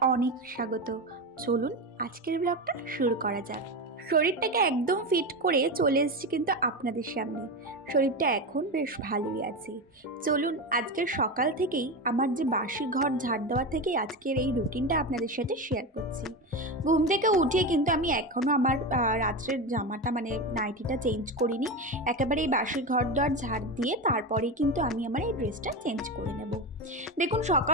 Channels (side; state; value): both; normal; correlation 0.19